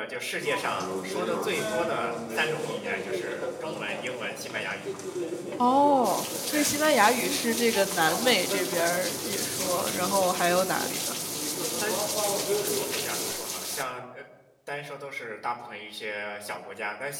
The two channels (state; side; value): identical; both; correlation 1.00